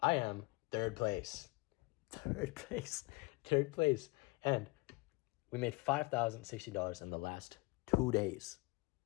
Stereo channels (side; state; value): right; quieter; 25.1 dB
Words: I am third place. Third place. Third place. And we made $5,060 in the last 2 days.